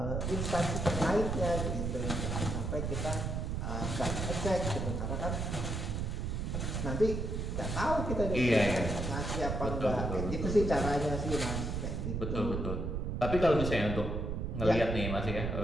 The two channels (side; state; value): right; noise; rumble, 2 dB below the sound